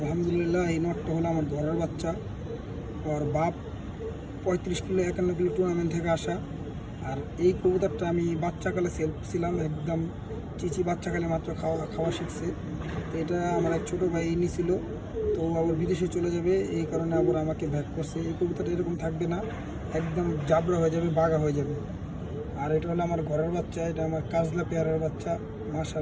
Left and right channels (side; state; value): both; identical; correlation 1.00